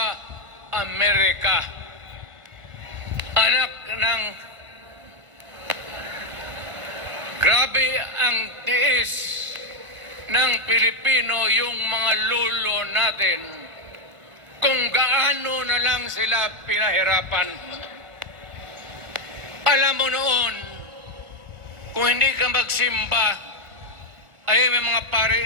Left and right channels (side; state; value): left; late; 1.5 ms